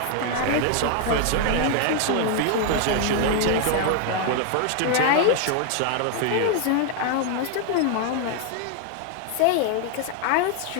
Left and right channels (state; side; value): different; both; correlation 0.00